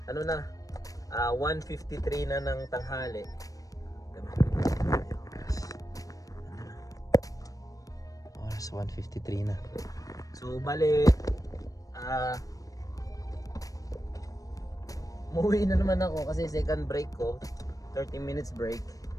Ano na, 1:53 na ng tanghali. Oras 1:53 na. So bale, umuwi na naman ako kasi second break ko, 30 minutes break.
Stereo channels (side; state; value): right; late; 0.17 ms